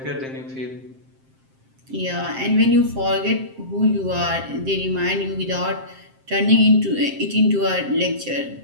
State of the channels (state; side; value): late; left; 7.6 ms